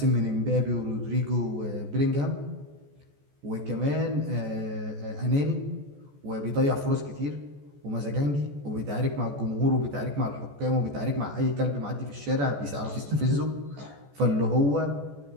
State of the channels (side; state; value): left; late; 14 ms